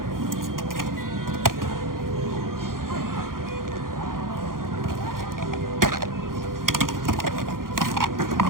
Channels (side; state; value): left; late; 0.91 ms